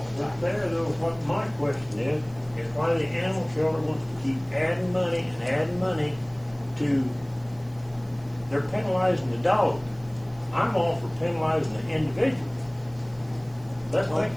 the But time. there, though, what my question is why the animal shelter wants to keep adding money to, they're penalizing the dog. I'm all for penalizing the individual. Let's make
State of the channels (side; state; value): right; noise; hiss, 28 dB below the sound